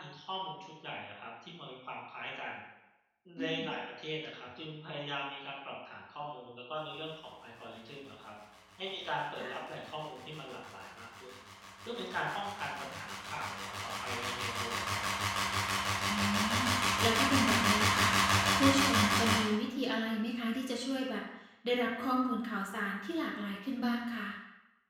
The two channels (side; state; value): both; identical; correlation 1.00